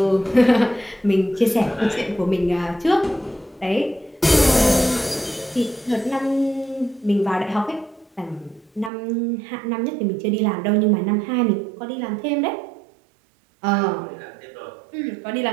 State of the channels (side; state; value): left; drops out; at 8.9 s